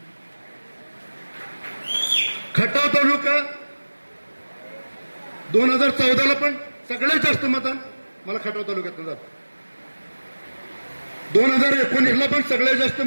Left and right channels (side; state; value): both; inverted; correlation -1.00